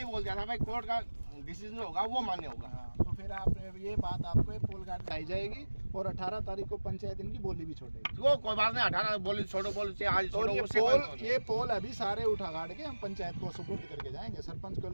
बोल दिया था भाई कोर्ट का डिसीजन होगा वो मान्य होगा। तो फिर आपने ये बात, आपको ये पोल गार्ड लाई जाएगी और 18 तारीख को पंचायत इनकी बोली भी छोड़ेगी। वो कोई बात नहीं, 18 बोली छोड़ो, बोली आज छोड़ो। ये पोल अभी सारे उठा गाड़ के हम पंचायत को सुपुर्द करके जाएंगे, सरपंच को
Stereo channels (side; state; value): both; inverted; correlation -1.00